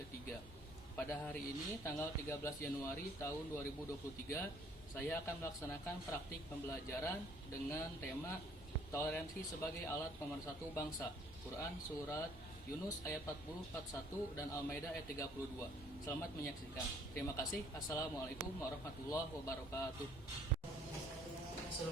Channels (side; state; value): both; normal; correlation 0.60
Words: Pada hari ini, tanggal 13 Januari tahun 2023, saya akan melaksanakan praktik pembelajaran dengan tema toleransi sebagai alat pemersatu bangsa. Quran Surat Yunus ayat 40-41 dan Al-Maidah ayat 32. Selamat menyaksikan. Terima kasih. Assalamualaikum warahmatullahi wabarakatuh.